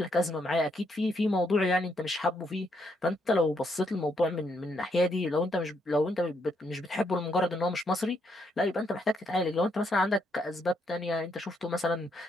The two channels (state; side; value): normal; both; correlation 0.75